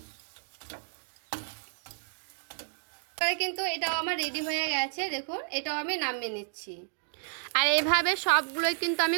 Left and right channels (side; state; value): left; silent; digital silence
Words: কিন্তু এটাও আমার রেডি হয়ে গেছে, দেখুন এটাও আমি নামিয়ে নিচ্ছি। আর এইভাবে সবগুলোই কিন্তু আমি